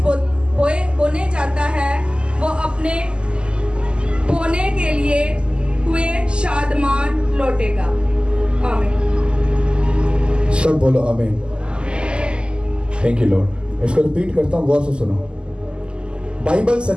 बोने जाता है वो अपने बोने के लिए हुए शादमान लौटेगा। आमीन। सब बोलो आमीन। Thank you Lord. इसको रिपीट करता हूँ, गौर से सुनो। बाइबल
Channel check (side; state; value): left; late; 0.049 ms